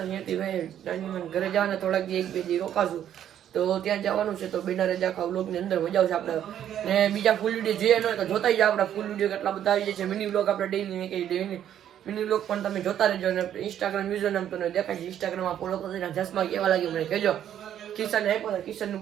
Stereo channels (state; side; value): quieter; left; 10.4 dB